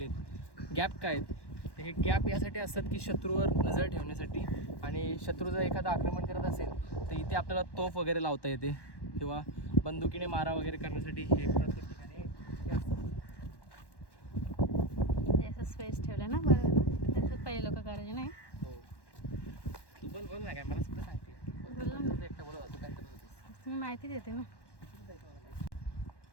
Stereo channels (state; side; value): late; right; 1.1 ms